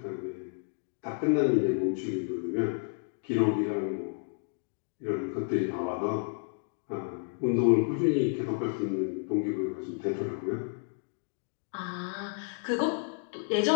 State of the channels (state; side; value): silent; right; 57 dB below the other